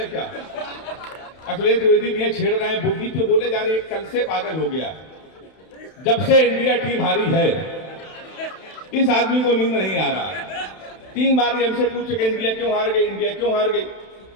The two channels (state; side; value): late; right; 31 ms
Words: क्या? अखिलेश द्विवेदी भी छेड़ रहे हैं, बुद्धि पे बोले जा रहे हैं, कल से पागल हो गया। जब से इंडिया टीम हारी है इस आदमी को नींद नहीं आ रहा। 3 बार हमसे पूछ के इंडिया क्यों हार गई, इंडिया क्यों हार गई।